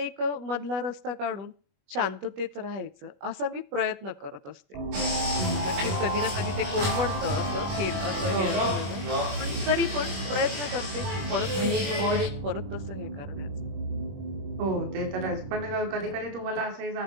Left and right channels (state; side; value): late; left; 21 ms